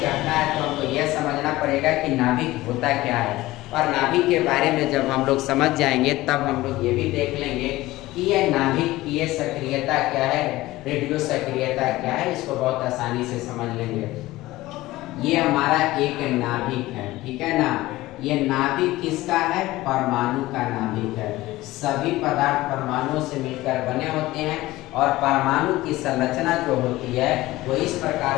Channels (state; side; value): quieter; right; 17.8 dB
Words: है तो हमको यह समझना पड़ेगा कि नाभिक होता क्या है, और नाभिक के बारे में जब हम लोग समझ जाएंगे तब हम लोग ये भी देख लेंगे कि यह नाभिकीय सक्रियता क्या है, रेडियो सक्रियता क्या है, इसको बहुत आसानी से समझ लेंगे। ये हमारा एक नाभिक है, ठीक है ना। ये नाभिक किसका है? परमाणु का नाभिक है। सभी पदार्थ परमाणुओं से मिलकर बने होते हैं और परमाणु की संरचना जो होती है वो इस